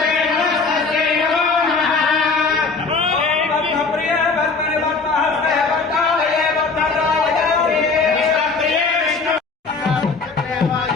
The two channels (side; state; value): right; quieter; 4.3 dB